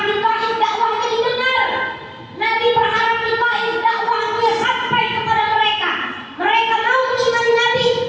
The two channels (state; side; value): identical; both; correlation 1.00